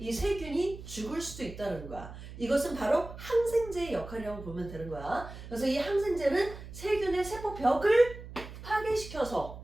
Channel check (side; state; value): right; noise; hum, 13 dB below the sound